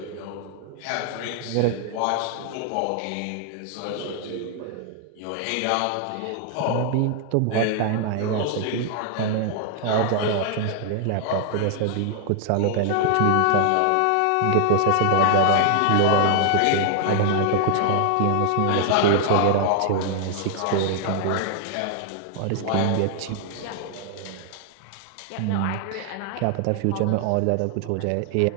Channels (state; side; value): different; both; correlation 0.00